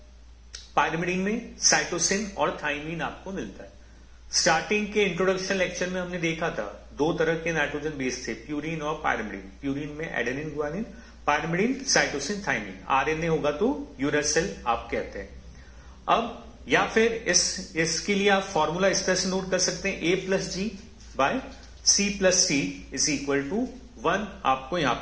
पायरिमिडीन में साइटोसिन और थाइमिन आपको मिलता है। स्टार्टिंग के इंट्रोडक्शन लेक्चर में हमने देखा था दो तरह के नाइट्रोजन बेस थे, प्यूरिन और पायरिमिडीन। प्यूरिन में adenine guanine, pyrimidine cytosine thymine. RNA होगा तो यूरेसिल आप कहते हैं। अब या फिर इसके लिए आप फॉर्मूला इस तरह से नोट कर सकते हैं, A plus G by C plus C is equal to 1 आपको यहां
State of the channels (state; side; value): identical; both; correlation 1.00